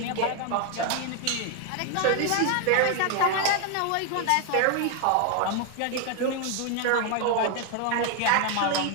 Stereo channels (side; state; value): both; different; correlation 0.01